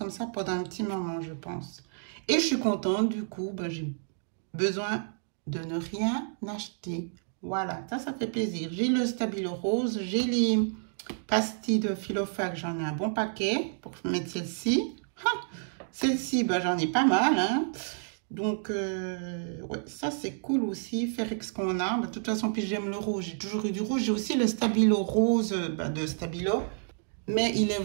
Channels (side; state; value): left; silent; digital silence